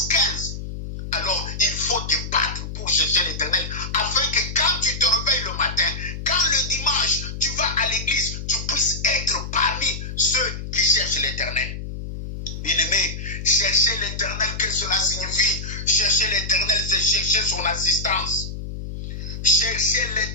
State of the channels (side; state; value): left; noise; hum, 7 dB below the sound